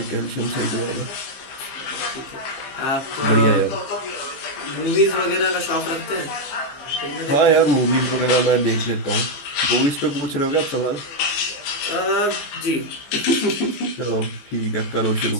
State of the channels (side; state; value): right; late; 14 ms